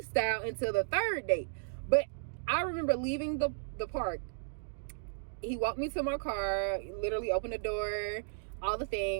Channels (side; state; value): left; silent; digital silence